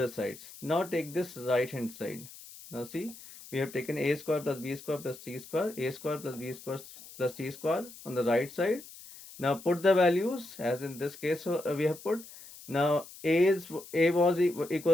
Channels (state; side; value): noise; left; hiss, 17 dB below the sound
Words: sides. Now take this right hand side. Now see, we have taken a square plus b square plus c square, a square plus b square plus c square on the right side. Now put the values as in this case we have put. Now a was